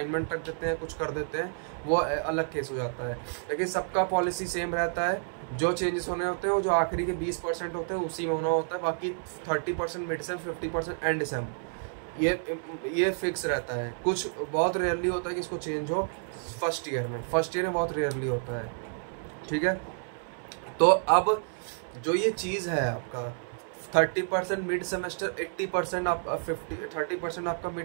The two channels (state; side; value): silent; left; 58 dB below the other